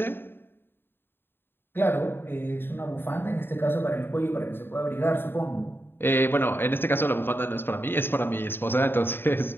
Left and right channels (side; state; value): right; late; 0.10 ms